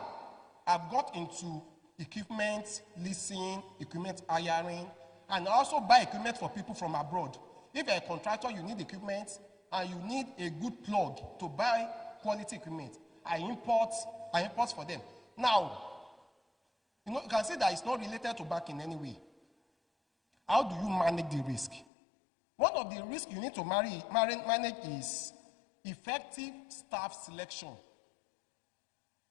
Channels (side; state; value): right; drops out; at 21.9 s